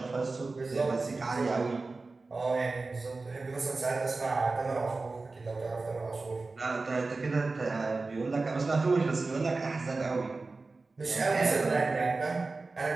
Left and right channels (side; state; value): left; quieter; 3.7 dB